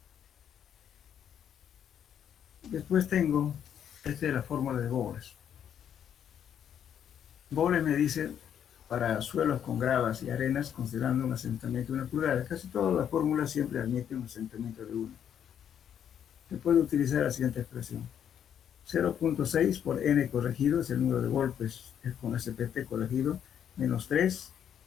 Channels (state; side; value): quieter; right; 9.1 dB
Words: Después tengo, esta es la fórmula de Bowles. Bowles me dice, para suelos con gravas y arenas, considerando un asentamiento de 1 pulgada, casi todas las fórmulas siempre admiten un asentamiento de 1. Se puede utilizar la siguiente expresión. 0.6 por n corregido es el número de golpes con SPT corregido, menos 3